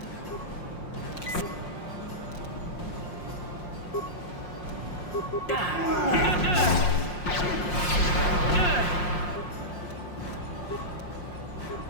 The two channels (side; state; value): right; late; 5.6 ms